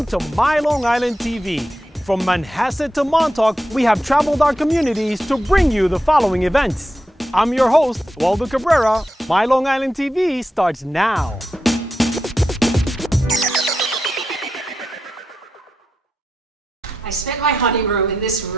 to MyLITV. From Manhasset to Montauk, we have traveled our communities to bring you the following events. I'm your host, Waldo Cabrera. MyLITV starts now. I spent my honeymoon in this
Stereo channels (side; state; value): both; normal; correlation 0.87